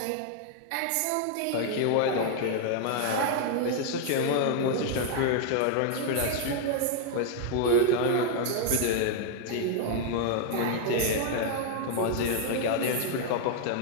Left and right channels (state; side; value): different; both; correlation 0.00